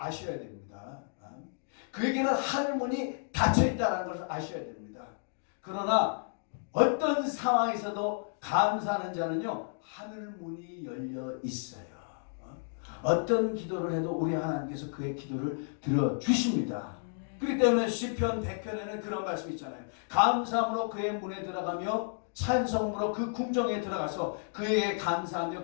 됩니다. 그에게는 하늘문이 닫혀 있다는 걸 아셔야 됩니다. 그러나 어떤 상황에서도 감사하는 자는요, 하늘문이 열려 있어요. 어떤 기도를 해도 우리 하나님께서 그의 기도를 들어주십니다. 그렇기 때문에 시편 100편에는 그런 말씀이 있잖아요. 감사함으로 그의 문에 들어가며 찬송으로 그 궁정에 들어가서 그에게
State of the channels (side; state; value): right; silent; digital silence